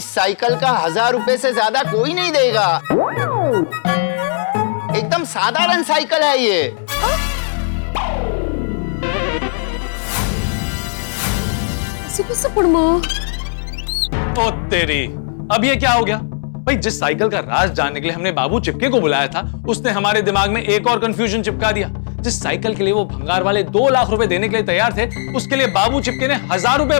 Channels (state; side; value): silent; right; digital silence